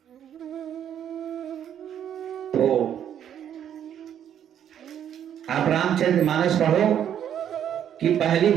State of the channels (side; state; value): left; quieter; 9.7 dB